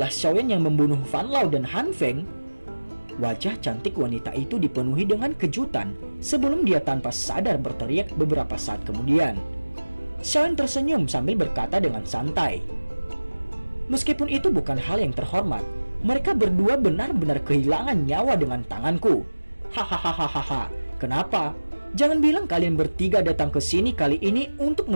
Xiaoyan yang membunuh Fan Lao dan Han Feng? Wajah cantik wanita itu dipenuhi dengan kejutan sebelum dia tanpa sadar berteriak beberapa saat kemudian. Xiaoyan tersenyum sambil berkata dengan santai, meskipun itu bukan hal yang terhormat, mereka berdua benar-benar kehilangan nyawa dengan tanganku. Hahaha, kenapa? Jangan bilang kalian bertiga datang ke sini kali ini untuk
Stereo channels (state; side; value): inverted; both; correlation -1.00